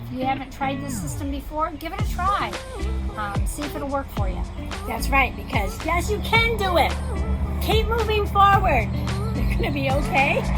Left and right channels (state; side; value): identical; both; correlation 1.00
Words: you haven't tried this system before, give it a try. See if it'll work for you. That's right, because yes, you can do it. Keep moving forward. You're going to be okay,